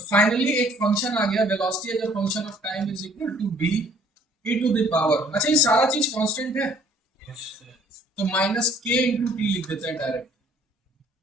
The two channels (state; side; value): normal; both; correlation 0.58